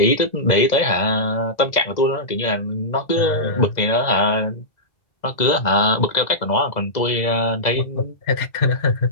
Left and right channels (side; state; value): right; late; 2.0 ms